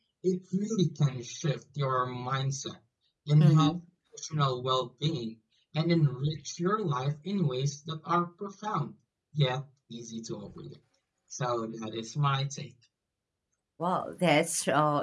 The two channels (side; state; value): both; identical; correlation 1.00